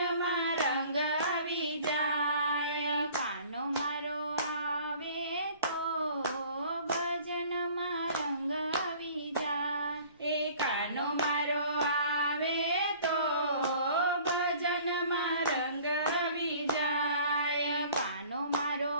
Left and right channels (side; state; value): both; inverted; correlation -0.50